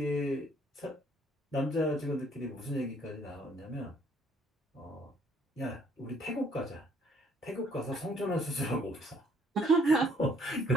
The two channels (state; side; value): normal; both; correlation 0.63